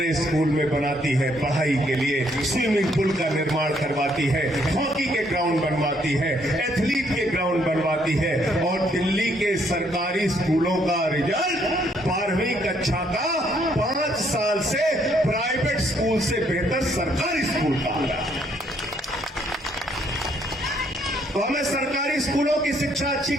स्कूल में बनाती है, पढ़ाई के लिए स्विमिंग पूल का निर्माण करवाती है, हॉकी के ग्राउंड बनवाती है, एथलीट के ग्राउंड बनवाती है। और दिल्ली के सरकारी स्कूलों का रिजल्ट 12वीं कक्षा का 5 साल से प्राइवेट स्कूल से बेहतर सरकारी स्कूल का आ रहा है। तो हमें सरकारी स्कूलों की शिक्षा अच्छी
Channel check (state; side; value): normal; both; correlation 0.69